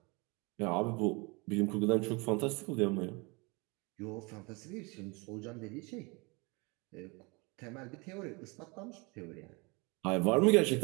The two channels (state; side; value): quieter; left; 28.2 dB